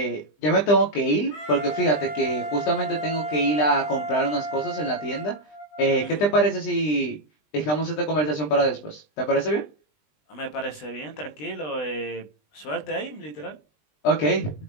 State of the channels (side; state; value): right; late; 20 ms